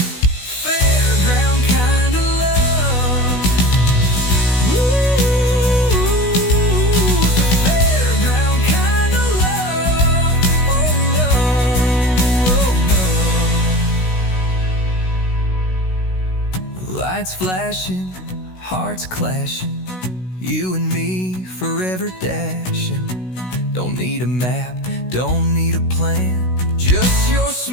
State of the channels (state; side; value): late; right; 16 ms